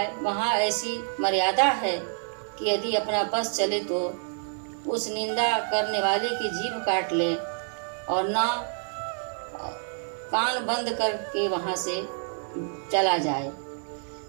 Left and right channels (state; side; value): silent; left; digital silence